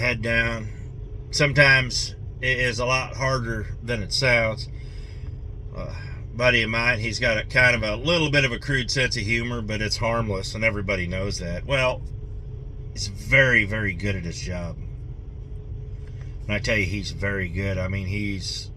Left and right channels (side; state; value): both; identical; correlation 1.00